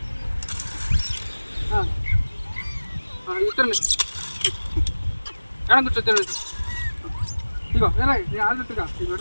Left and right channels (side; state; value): both; inverted; correlation -1.00